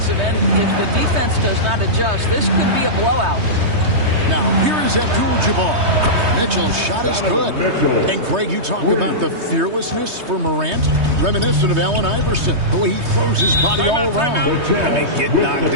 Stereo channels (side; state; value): left; late; 3.2 ms